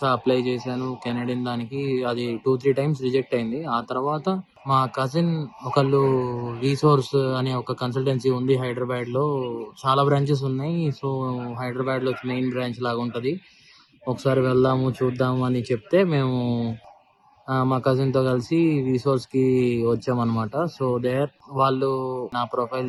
అప్లై చేశాను. కెనడియన్ దానికి అది 2-3 టైమ్స్ రిజెక్ట్ అయింది. ఆ తర్వాత మా కజిన్ ఒకళ్ళు రీసోర్స్ అనే ఒక కన్సల్టెన్సీ ఉంది హైదరాబాద్‌లో. చాలా బ్రాంచెస్ ఉన్నాయి. సో, హైదరాబాద్‌లో మెయిన్ బ్రాంచ్ లాగా ఉంటది. ఒకసారి వెళ్దాము, చూద్దాము అని చెప్తే మేము మా కజిన్‌తో కలిసి రిసోర్స్‌కి వచ్చామనమాట. సో, వాళ్ళు నా ప్రొఫైల్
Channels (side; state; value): both; identical; correlation 1.00